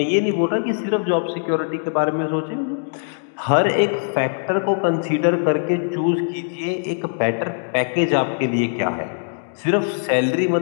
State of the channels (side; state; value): right; silent; digital silence